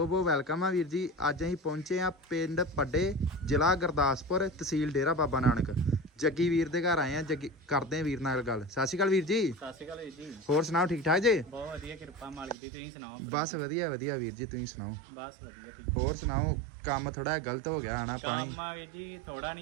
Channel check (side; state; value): left; drops out; at 12.6 s